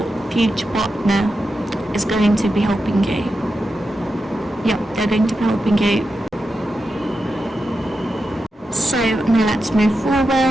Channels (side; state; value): both; normal; correlation 0.89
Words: future partner, is going to be helping you. Yep, they're going to be helping you. So now let's move